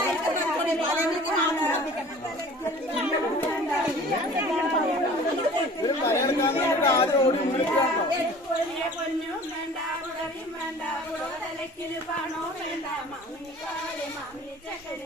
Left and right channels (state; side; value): normal; both; correlation 0.45